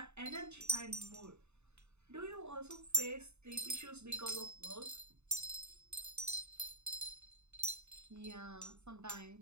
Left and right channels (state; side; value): late; left; 0.81 ms